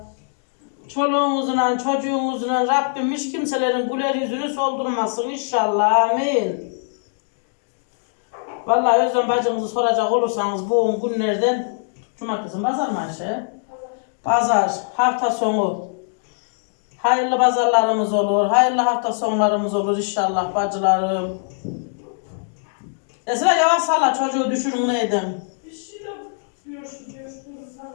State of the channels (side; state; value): right; silent; 64 dB below the other